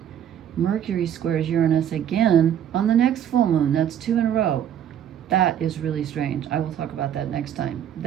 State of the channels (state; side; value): quieter; left; 9.7 dB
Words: Mercury squares Uranus again on the next full moon. That's 2 in a row. That is really strange. I will talk about that next time.